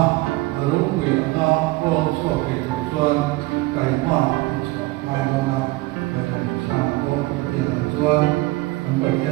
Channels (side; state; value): left; quieter; 20.4 dB